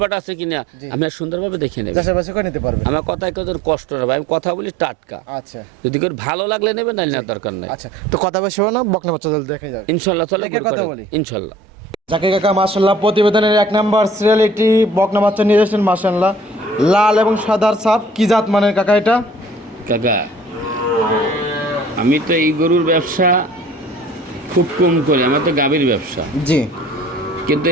আছে কিনা, জি। আমি আর সুন্দরভাবে দেখে নেবেন। চাষাবাসি করে নিতে পারবেন। আমার কথায় কত কষ্ট হবে, আমি কথা বলি টাটকা। আচ্ছা যদি কেউ ভালো লাগলে নেবেন, নাহলে নেওয়ার দরকার নাই। আচ্ছা তো কথা বেশি হবে না, বকনা বাচ্চা দেখে যাবে। ইনশাল্লাহ চলে দেখে কথা বলি। ইনশাল্লাহ। জাকির কাকা মাশাআল্লাহ প্রতিবেদনের 1 নাম্বার সিরিয়াল একটি বকনা বাচ্চা নিয়ে এসেছেন মাশাআল্লাহ, লাল এবং সাদার ছাপ, কি জাত মানের কাকা এটা? কাকা, আমি তো এই গরুর ব্যবসা খুব কম করি, আমার তো গাভীর ব্যবসা, জি কিন্তু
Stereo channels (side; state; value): both; normal; correlation 0.52